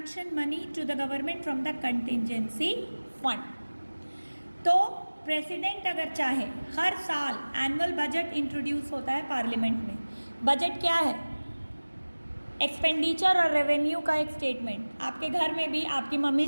money to the government from the contingency fund. तो president अगर चाहे, हर साल annual budget introduce होता है parliament में. Budget क्या है? Expenditure और रेवेन्यू का एक स्टेटमेंट. आपके घर में भी आपकी मम्मी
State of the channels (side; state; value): both; inverted; correlation -1.00